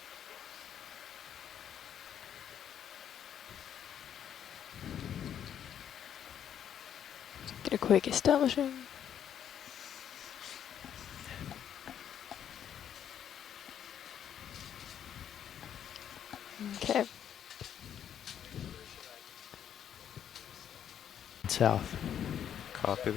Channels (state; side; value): quieter; right; 9.4 dB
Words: Get a quick establishing. Okay. South. Copy